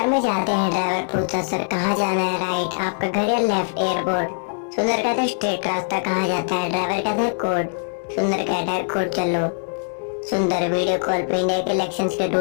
में जाते हैं। ड्राइवर पूछता सर कहाँ जाना है? राइट। आपका घर या लेफ्ट? एयरपोर्ट। सुंदर कहता है स्ट्रेट। रास्ता कहाँ जाता है? ड्राइवर कहता है कोड। सुंदर कहता है कोड चलो। सुंदर वीडियो कॉल पे इंडिया के इलेक्शंस के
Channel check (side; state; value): right; silent; digital silence